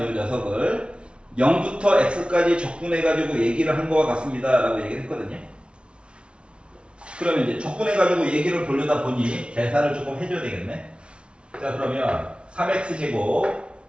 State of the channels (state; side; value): late; left; 0.058 ms